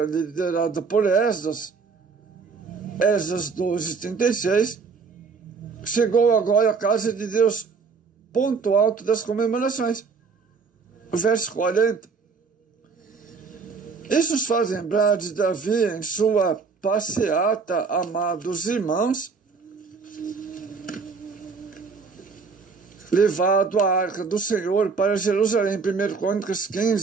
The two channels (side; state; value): left; quieter; 5.1 dB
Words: liderada por Esdras, Esdras 12, 36, chegou agora à casa de Deus, ponto alto das comemorações. Verso 40. Isso nos faz lembrar de Davi em sua passeata, amados irmãos, levado a arca do Senhor para Jerusalém, 1 Crônicas